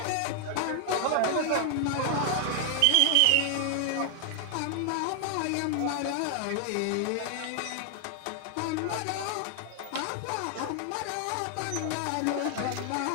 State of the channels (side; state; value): both; different; correlation 0.00